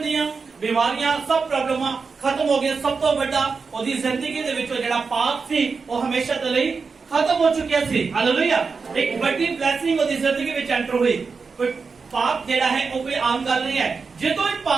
ਦੀਆਂ ਬਿਮਾਰੀਆਂ ਸਭ ਪ੍ਰੋਬਲਮਾਂ ਖਤਮ ਹੋ ਗਈਆਂ। ਸਭ ਤੋਂ ਵੱਡਾ ਉਹਦੀ ਜ਼ਿੰਦਗੀ ਦੇ ਵਿੱਚੋਂ ਜਿਹੜਾ ਪਾਪ ਸੀ ਉਹ ਹਮੇਸ਼ਾ ਦੇ ਲਈ ਖਤਮ ਹੋ ਚੁੱਕਿਆ ਸੀ। ਹਾਲੇਲੂਇਆ। ਇੱਕ ਵੱਡੀ ਬਲੇਸਿੰਗ ਉਹਦੀ ਜ਼ਿੰਦਗੀ ਵਿੱਚ ਐਂਟਰ ਹੋਈ। ਕੋਈ ਪਾਪ ਜਿਹੜਾ ਹੈ ਉਹ ਕੋਈ ਆਮ ਗੱਲ ਨਹੀਂ ਹੈ। ਜਦੋਂ ਇਹ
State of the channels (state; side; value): quieter; left; 4.9 dB